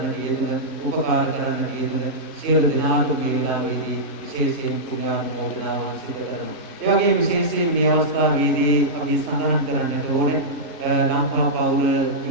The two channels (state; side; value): normal; both; correlation -0.11